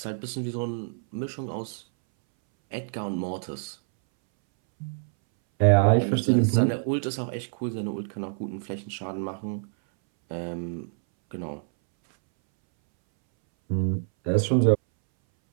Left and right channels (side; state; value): left; silent; 61 dB below the other